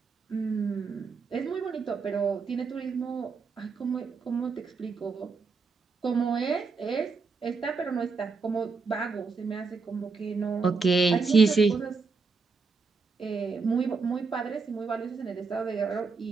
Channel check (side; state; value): left; quieter; 4.7 dB